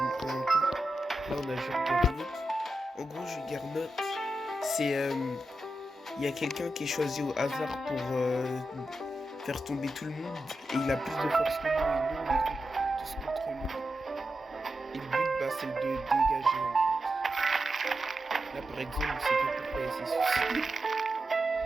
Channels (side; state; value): both; normal; correlation 0.89